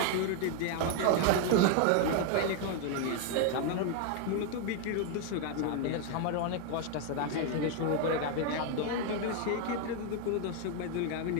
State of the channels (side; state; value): both; different; correlation 0.00